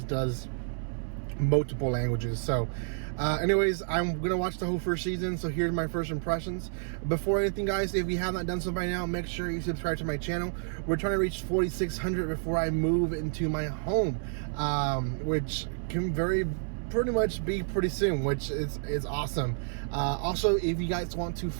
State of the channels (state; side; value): silent; left; 57 dB below the other